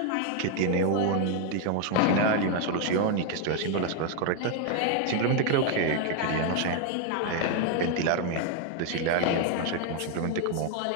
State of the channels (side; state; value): both; different; correlation 0.01